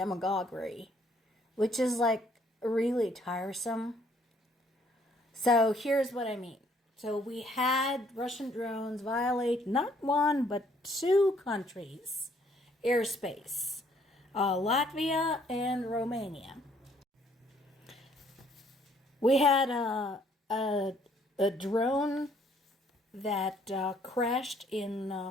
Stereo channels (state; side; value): normal; both; correlation 0.64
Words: which is like really tiresome. So here's what I mean. So we had Russian drones violate not one but two countries' airspace, Latvia and Romania. We had a drone that crashed in